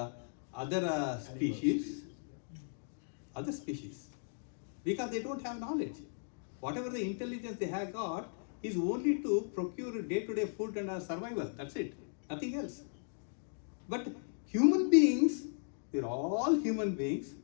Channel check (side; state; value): right; silent; digital silence